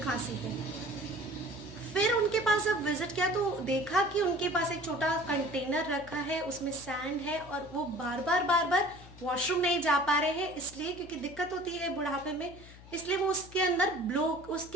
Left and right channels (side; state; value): left; noise; hum, 19 dB below the sound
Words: खांसी है। फिर उनके पास जब विजिट किया तो देखा कि उनके पास एक छोटा कंटेनर रखा है, उसमें सैंड है और वो बार बार वॉशरूम नहीं जा पा रहे हैं, इसलिए क्योंकि दिक्कत होती है बुढ़ापे में, इसलिए वो